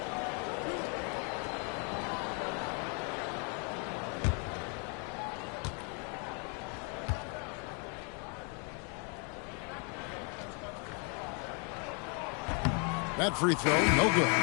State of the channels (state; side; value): quieter; right; 36.8 dB